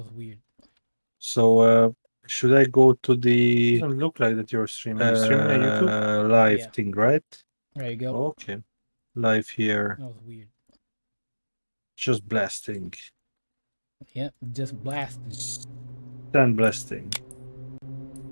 weird. So should I go to the doesn't look like that you're streaming. You streaming on YouTube? Live Yeah. thing, right? There you go. Okay. Live here. That was weird. Just blasting. Yep, just blasted. Stand blasting.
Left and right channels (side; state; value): both; inverted; correlation -1.00